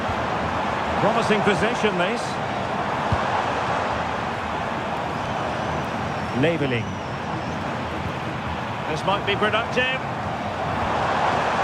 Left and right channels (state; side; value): identical; both; correlation 1.00